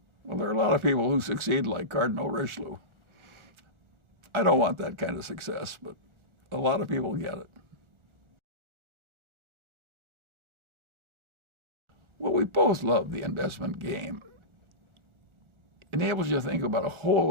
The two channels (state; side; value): late; left; 1.4 ms